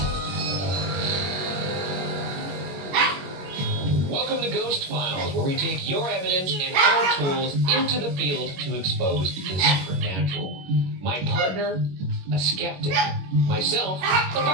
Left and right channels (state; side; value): late; left; 21 ms